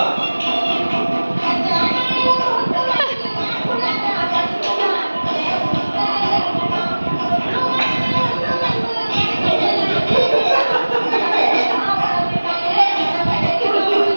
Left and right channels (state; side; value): inverted; both; correlation -1.00